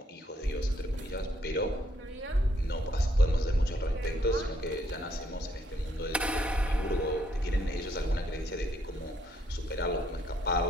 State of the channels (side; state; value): both; normal; correlation 0.71